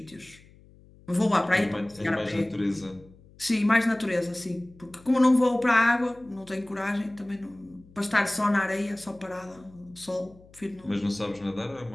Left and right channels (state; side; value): noise; left; hum, 25 dB below the sound